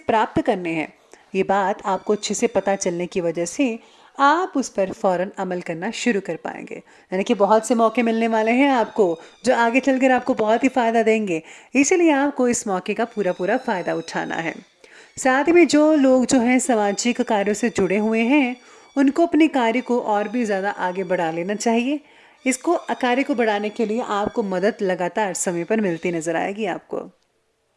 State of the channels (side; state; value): both; identical; correlation 1.00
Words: करने हैं, ये बात आपको अच्छे से पता चलने की वजह से आप उस पर फौरन अमल करना शुरू कर पाएंगे। यानी कि बहुत से मौके मिलने वाले हैं आपको जो आगे चलकर आपको बहुत ही फ़ायदा देंगे, इसीलिए आपको इस मौके का पूरा पूरा फ़ायदा उठाना है। साथ ही में जो लोग जो हैं सामाजिक कार्यों से जुड़े हुए हैं, उनको अपने कार्य को और भी ज़्यादा आगे बढ़ा लेना चाहिए। इसको कार्य को बढ़ाने के लिए आपको मदद लगातार समय पर मिलती नजर आएगी आपको।